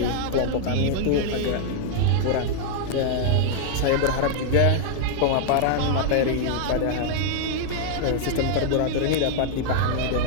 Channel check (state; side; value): different; both; correlation 0.00